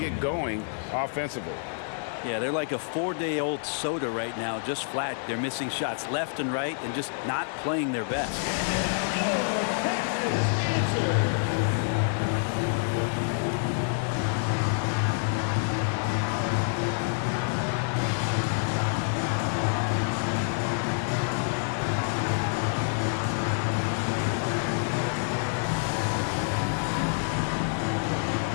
going offensively. Yeah, they're like a 4-day-old soda right now, just flat. They're missing shots left and right and just not playing their best.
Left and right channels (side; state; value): right; silent; 60 dB below the other